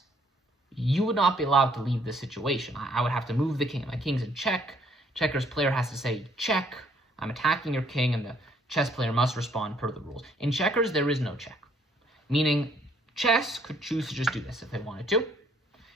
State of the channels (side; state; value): both; normal; correlation 0.65